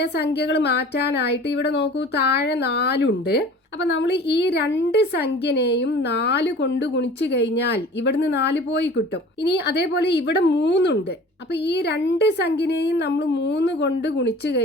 മാറ്റാനായിട്ട് ഇവിടെ നോക്കൂ, താഴെ 4 ഉണ്ട്. അപ്പം നമ്മൾ ഈ 2 സംഖ്യനെയും 4 കൊണ്ട് ഗുണിച്ചു കഴിഞ്ഞാൽ ഇവിടുന്ന് 4 പോയി കിട്ടും. ഇനി അതേപോലെ ഇവിടെ 3 ഉണ്ട്. അപ്പം ഈ 2 സംഖ്യനെയും നമ്മൾ 3 കൊണ്ട് ഗുണിച്ചു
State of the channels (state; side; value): normal; both; correlation 0.44